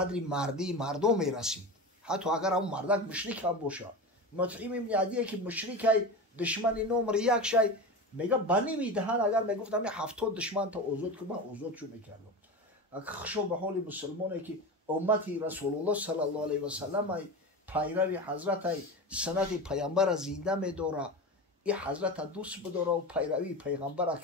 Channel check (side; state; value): both; normal; correlation 0.26